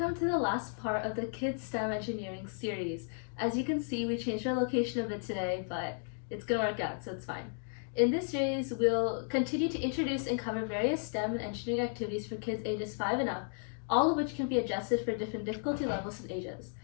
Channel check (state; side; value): silent; right; 55 dB below the other